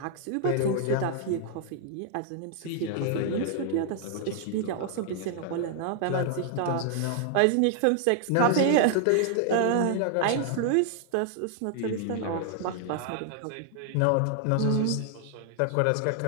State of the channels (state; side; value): different; both; correlation 0.00